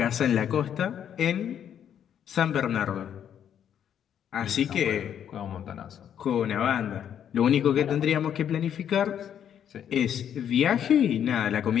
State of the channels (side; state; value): right; quieter; 9.3 dB